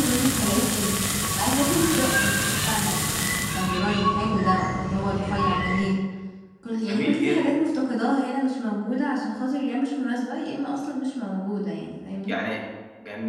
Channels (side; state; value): both; identical; correlation 1.00